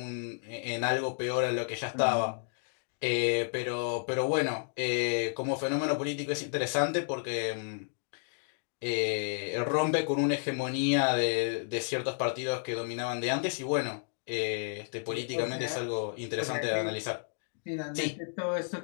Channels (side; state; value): right; silent; digital silence